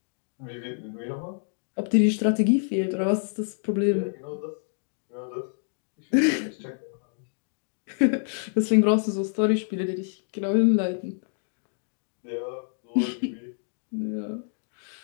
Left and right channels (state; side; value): silent; right; digital silence